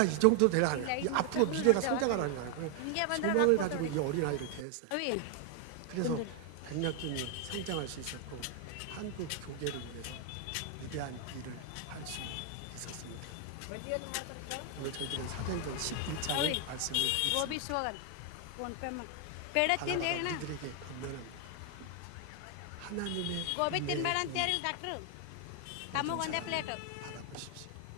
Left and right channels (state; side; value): different; both; correlation 0.00